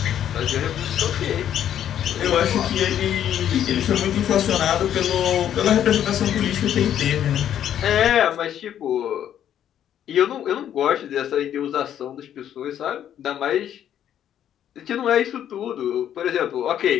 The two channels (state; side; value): quieter; right; 10.3 dB